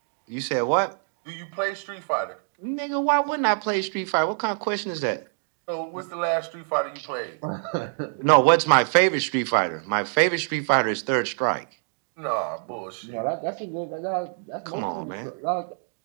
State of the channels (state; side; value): silent; left; 61 dB below the other